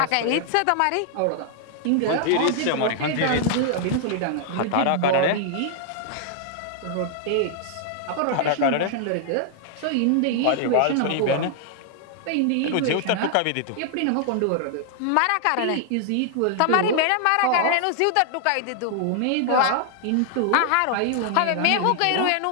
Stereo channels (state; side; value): different; both; correlation 0.00